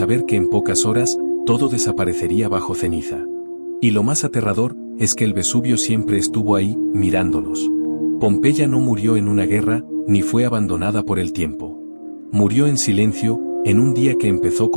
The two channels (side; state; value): both; inverted; correlation -1.00